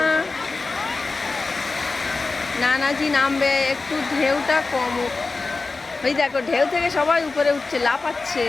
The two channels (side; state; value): right; quieter; 3.8 dB